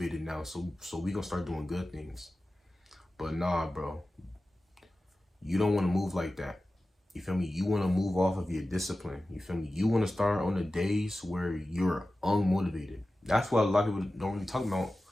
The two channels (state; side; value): normal; both; correlation 0.95